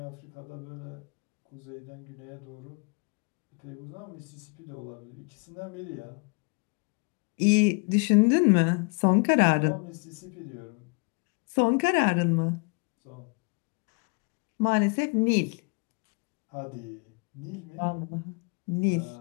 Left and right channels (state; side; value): quieter; right; 34.3 dB